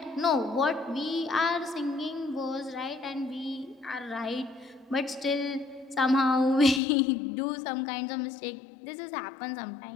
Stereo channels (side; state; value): right; drops out; at 6.8 s